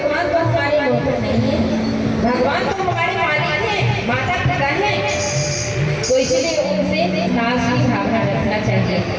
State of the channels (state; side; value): identical; both; correlation 1.00